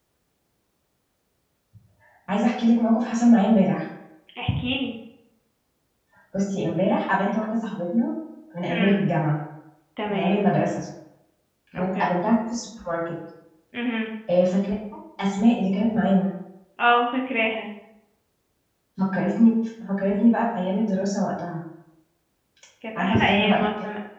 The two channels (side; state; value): both; identical; correlation 1.00